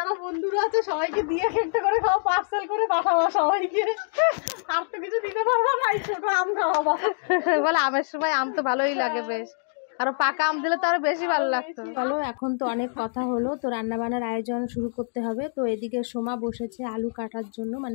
বন্ধুরা আছে সবাইকে দিয়ে একটা করে খাওয়া, পার্সেল করে পাঠাবো সবাইকে। আর তো কিছু দিতে পারবো না, ছোট আম খাওয়াবো। বলে আমের সময় আম তো ভালোই লাগে বেশ, আরো পাকা আম দিলে তো আরো বেশি ভালো লাগতো। চলো এখন তো অনেক কথা হলো, তো রান্না বান্নার আয়োজন শুরু করতে হবে। তো এদিকে সোমা বসেছে আলু কাটার জন্য,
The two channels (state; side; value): silent; right; digital silence